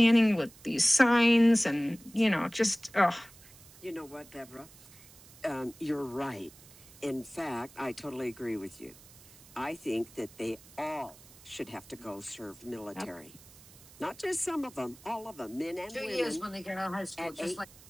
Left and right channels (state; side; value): noise; right; hiss, 22 dB below the sound